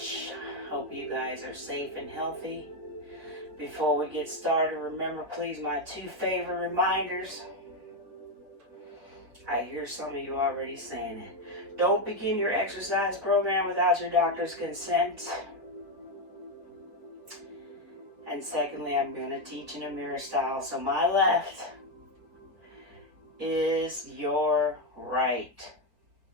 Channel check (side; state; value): left; late; 4.3 ms